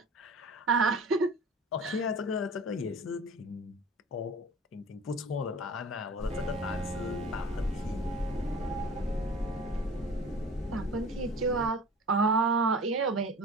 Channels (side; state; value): both; normal; correlation 0.40